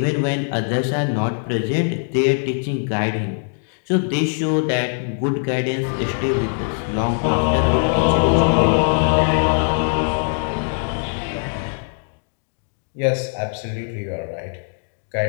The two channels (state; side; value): silent; right; 65 dB below the other